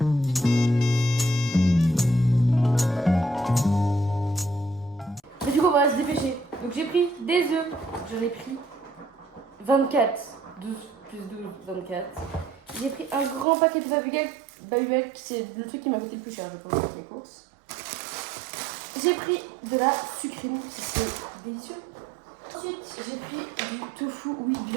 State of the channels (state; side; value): drops out; left; at 13.5 s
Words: Mais du coup on va se dépêcher. Donc j'ai pris des œufs. J'en ai pris 24. 12 plus 12, 24. J'ai pris un grand paquet de Babybel, c'est le truc qui m'a coûté le plus cher, je pense, avec les courses. J'ai pris de la sucrine, qui c'est délicieux. Ensuite, j'ai pris du tofu, oui,